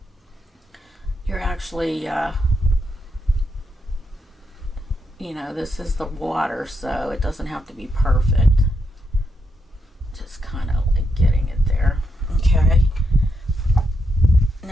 you're actually, you know, this is the water, so it doesn't have to be perfect. Just kind of like getting it there. Okay.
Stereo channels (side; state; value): both; normal; correlation 0.81